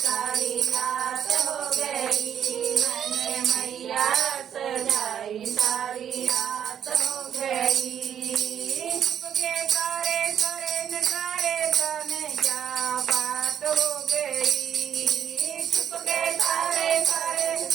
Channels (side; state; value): left; quieter; 9.1 dB